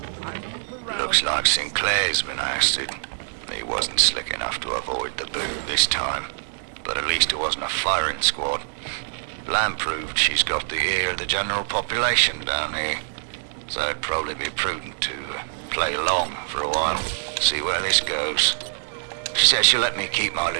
Looks like Sinclair's been ousted. He wasn't slick enough to avoid the boot this time. But at least it wasn't a firing squad. Lamb proved she's got the ear of the general population down here. So it'd probably be prudent to play along for a while, see where this goes. She says she'll let me keep my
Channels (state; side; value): silent; left; 62 dB below the other